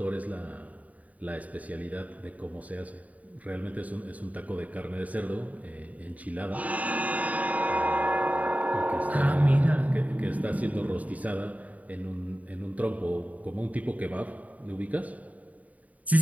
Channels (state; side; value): late; left; 0.071 ms